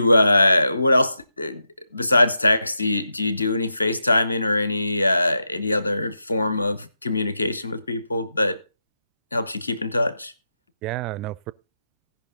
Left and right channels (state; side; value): inverted; both; correlation -0.87